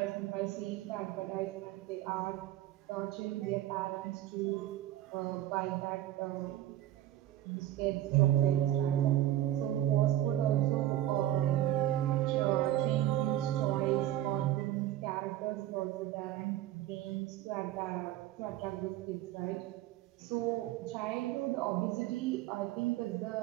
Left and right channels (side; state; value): left; quieter; 13.5 dB